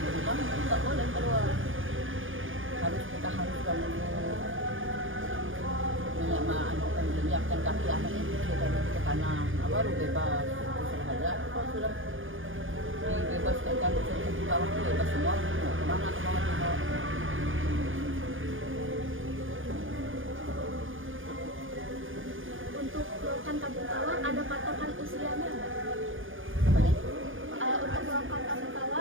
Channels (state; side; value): late; left; 0.58 ms